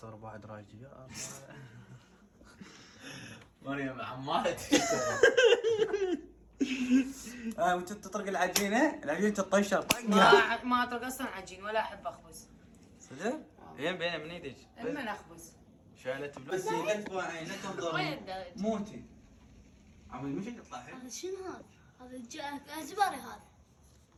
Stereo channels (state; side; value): identical; both; correlation 1.00